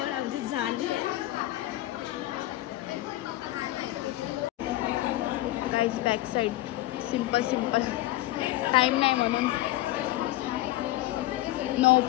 आमची झाली आहे. Guys back side simple time नाही म्हणून नो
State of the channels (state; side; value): quieter; right; 16.5 dB